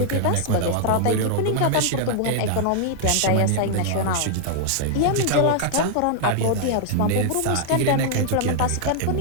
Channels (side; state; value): both; different; correlation -0.01